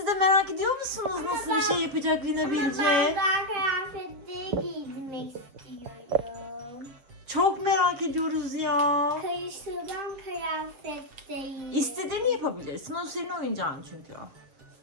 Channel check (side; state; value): left; late; 7.6 ms